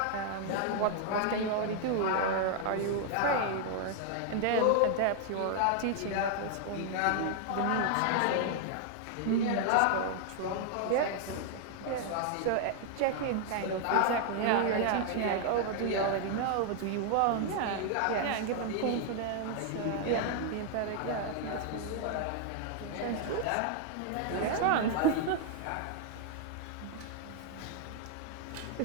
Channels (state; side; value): different; both; correlation 0.00